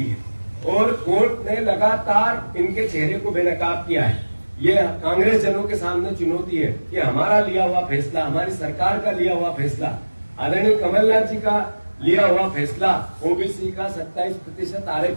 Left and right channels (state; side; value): inverted; both; correlation -1.00